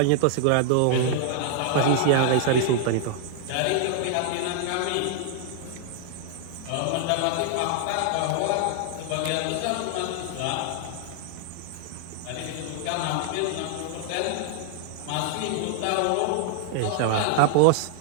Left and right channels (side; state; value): both; different; correlation 0.00